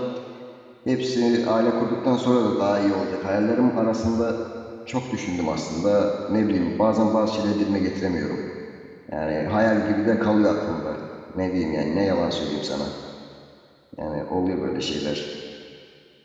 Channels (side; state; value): both; identical; correlation 1.00